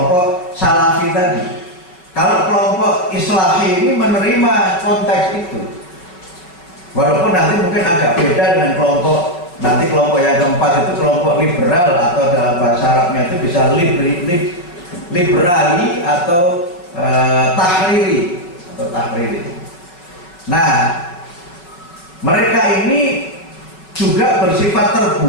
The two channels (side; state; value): right; late; 5.5 ms